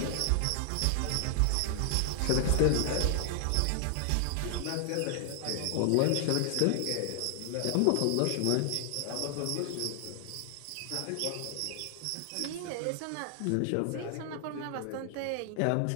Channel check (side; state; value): both; different; correlation 0.00